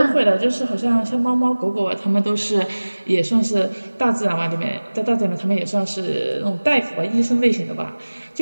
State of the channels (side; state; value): both; inverted; correlation -1.00